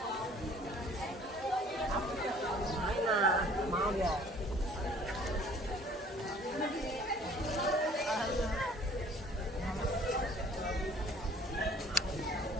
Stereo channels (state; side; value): normal; both; correlation 0.53